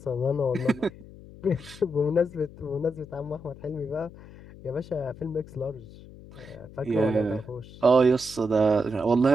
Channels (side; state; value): left; noise; hum, 18 dB below the sound